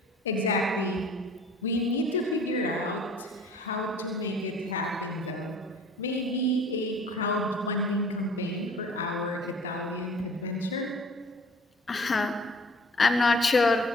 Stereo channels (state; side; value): normal; both; correlation 0.49